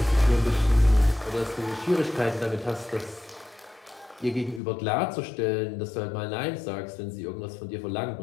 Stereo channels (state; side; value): drops out; right; at 4.6 s